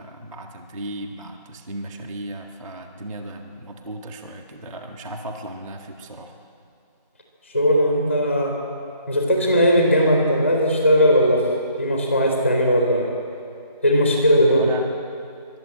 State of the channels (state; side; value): inverted; both; correlation -0.62